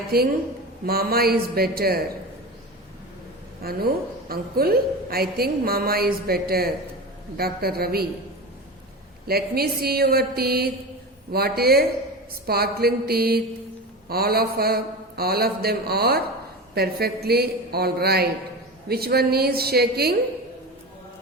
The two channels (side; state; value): both; normal; correlation 0.26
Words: mama is better. Anu, uncle, I think mama is better. Dr. Ravi, let me see your teeth. What a sparkling teeth. All of them are perfectly all right. Which one is shaking?